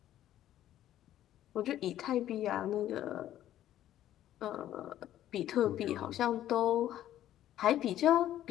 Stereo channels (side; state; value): right; quieter; 12.5 dB